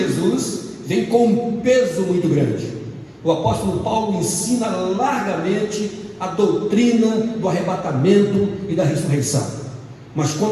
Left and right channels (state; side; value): identical; both; correlation 1.00